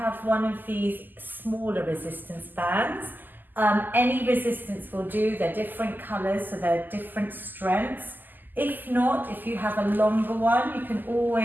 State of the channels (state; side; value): late; left; 0.088 ms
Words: one of these smaller resistance bands, any resistance will do. They're different colours, so they're different strengths. If not, if you have a longer one, you can